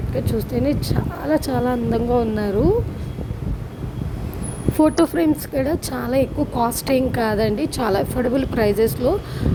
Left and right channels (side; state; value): both; identical; correlation 1.00